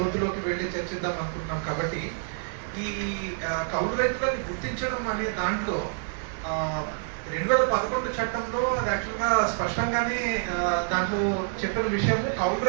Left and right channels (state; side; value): silent; left; 60 dB below the other